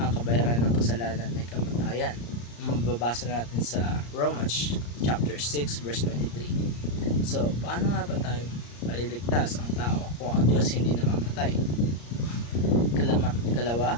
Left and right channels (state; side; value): late; right; 34 ms